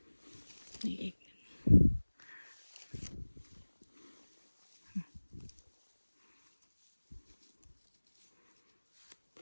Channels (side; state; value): both; inverted; correlation -1.00